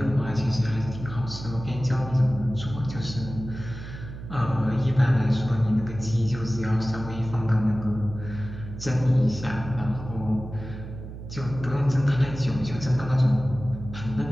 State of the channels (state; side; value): noise; right; hum, 11 dB below the sound